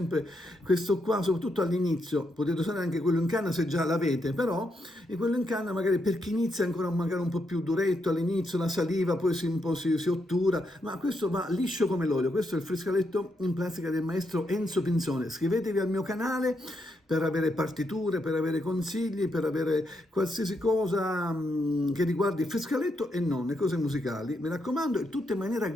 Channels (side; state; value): both; normal; correlation 0.80